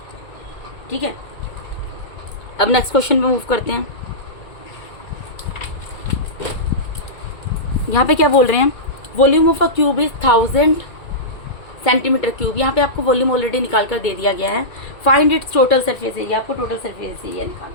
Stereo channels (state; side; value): late; right; 2.2 ms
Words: ठीक है, अब नेक्स्ट क्वेश्चन पे मूव करते हैं। यहाँ पे क्या बोल रहे हैं, volume of a cube is 1000 centimetre cube. यहाँ पे आपको वॉल्यूम ऑलरेडी निकाल कर दे दिया गया है। Find its total surface area, आपको टोटल सरफेस एरिया